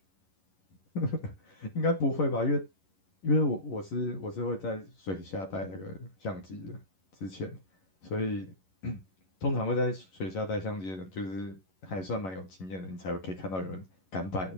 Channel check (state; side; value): late; right; 11 ms